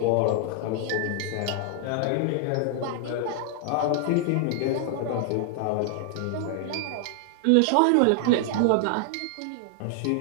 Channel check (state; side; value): different; both; correlation 0.00